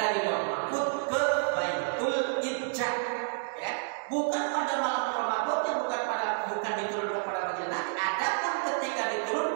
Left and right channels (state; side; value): silent; left; digital silence